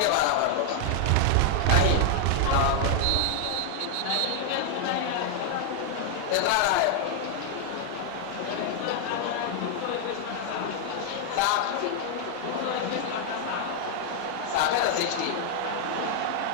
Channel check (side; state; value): both; different; correlation 0.00